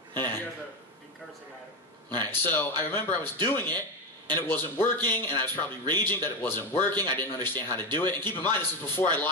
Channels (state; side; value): normal; both; correlation 0.13